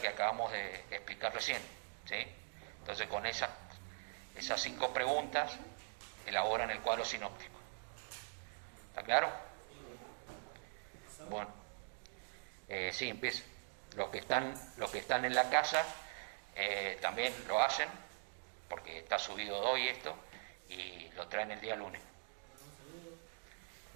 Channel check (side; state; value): left; silent; digital silence